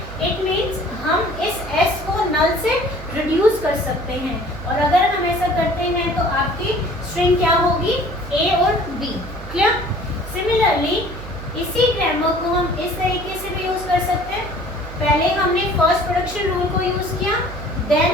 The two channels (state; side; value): noise; right; hum, 12 dB below the sound